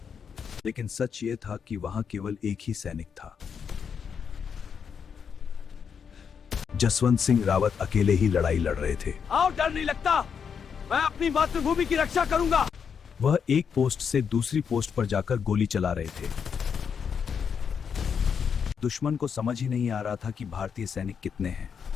लेकिन सच ये था कि वहां केवल एक ही सैनिक था। जसवंत सिंह रावत अकेले ही लड़ाई लड़ रहे थे। आओ, डर नहीं लगता, मैं अपनी मातृभूमि की रक्षा करूंगा। वह एक पोस्ट से दूसरी पोस्ट पर जाकर गोली चला रहे थे। दुश्मन को समझ ही नहीं आ रहा था कि भारतीय सैनिक कितने हैं।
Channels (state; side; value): quieter; right; 6.8 dB